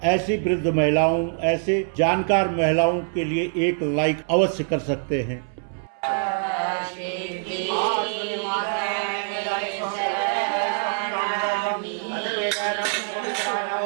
ऐसी वृद्ध महिलाओं, ऐसे जानकार महिलाओं के लिए एक लाइक अवश्य कर सकते हैं।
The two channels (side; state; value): left; silent; 62 dB below the other